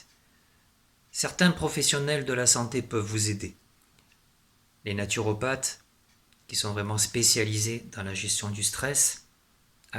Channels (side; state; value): both; identical; correlation 1.00